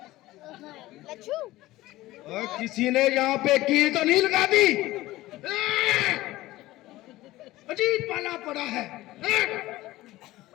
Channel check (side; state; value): right; quieter; 17.3 dB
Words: और किसी ने यहाँ पे की तो नहीं लगा दी। अजीब पाला पड़ा है।